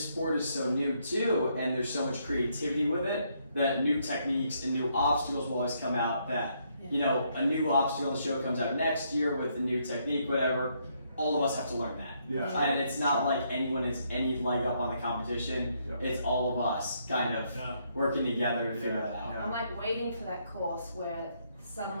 sport is so new too, and there's so much creativity with it that new techniques and new obstacles will always come out. That you know, a new obstacle on the show comes out next year with a new technique, whatever. All of us have to learn that. Yeah. And it's not like anyone has any leg up on the competition. Yep. It's all of us kind of yeah. working together to figure that out. Yeah. I'm like waiting for that course where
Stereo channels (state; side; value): inverted; both; correlation -0.73